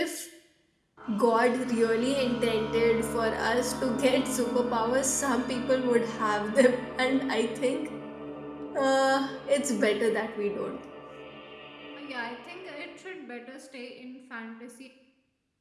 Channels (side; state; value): both; identical; correlation 1.00